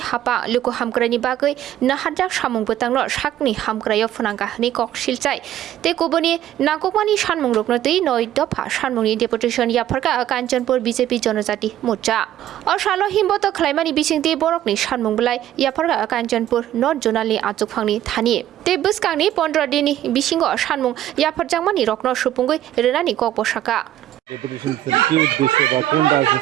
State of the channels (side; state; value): left; quieter; 12.4 dB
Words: हापा लुको हामक्रानि बागै नाहारजा सामुंबोतांनो साकनि हामक्रायाव फुनांगानि कक सिलचाय ते कुबनि नागकमानि सानमुं रुकनतै नय दफा सानमुंनि डेपुटेशन याफारखा कांचनपुर बीजेपी जनजाति मोर्चा असालो हिमबत खलाइमानि बिसिंति बरकनि सानमुंबलाय याफारखा कांचनपुर नर्थ जोनालनि आचुक फांनि थानि ते बुसकांनि 15 दिननि बिसिंग सानमुं याफारजांमानि रकनो सुपुंगै रेनानि कक बसाका